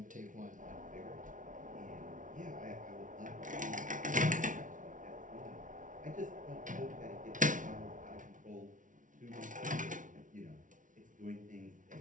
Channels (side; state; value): left; late; 0.38 ms